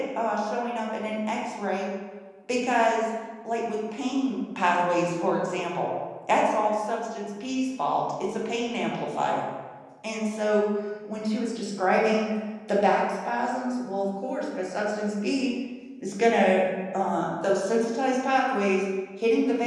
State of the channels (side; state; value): both; identical; correlation 1.00